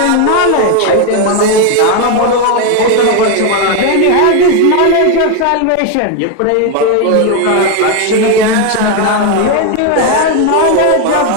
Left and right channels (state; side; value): different; both; correlation 0.01